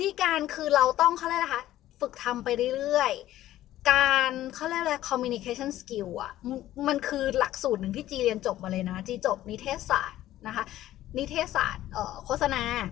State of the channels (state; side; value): quieter; right; 14.0 dB